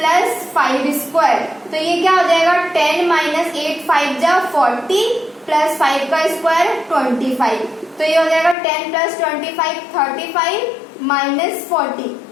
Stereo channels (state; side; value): drops out; right; at 8.6 s